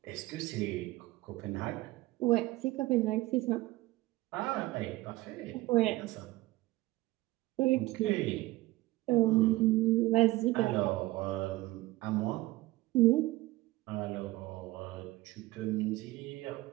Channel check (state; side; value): quieter; left; 18.7 dB